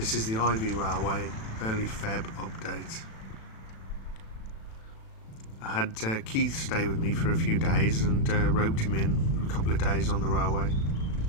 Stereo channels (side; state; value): right; late; 36 ms